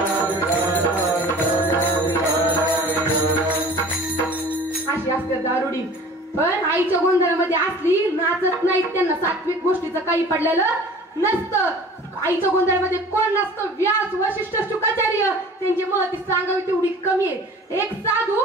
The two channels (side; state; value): both; normal; correlation 0.45